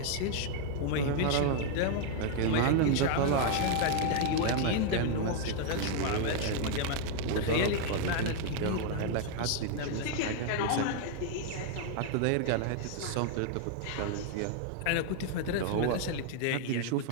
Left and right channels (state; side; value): different; both; correlation 0.00